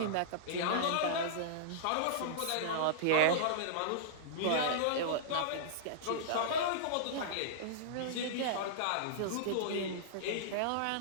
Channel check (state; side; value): different; both; correlation -0.03